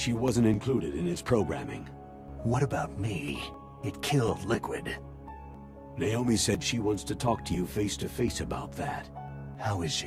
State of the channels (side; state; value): both; identical; correlation 1.00